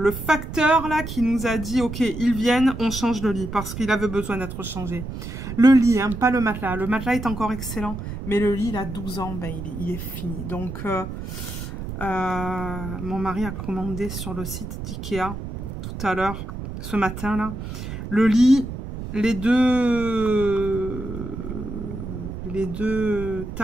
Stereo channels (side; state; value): right; noise; rumble, 8 dB below the sound